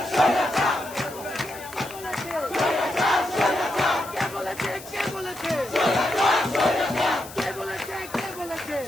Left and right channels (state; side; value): noise; left; hiss, 16 dB below the sound